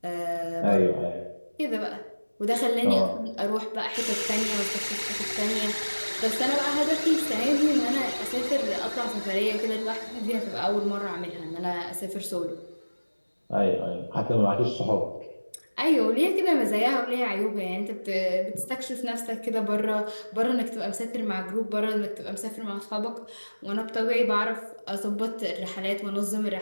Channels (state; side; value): inverted; both; correlation -1.00